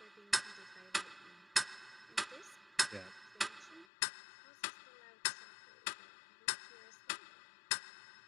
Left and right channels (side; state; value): right; drops out; at 3.9 s